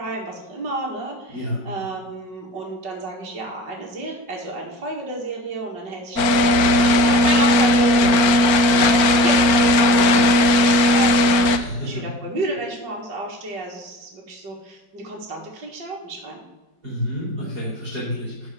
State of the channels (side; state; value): left; late; 4.4 ms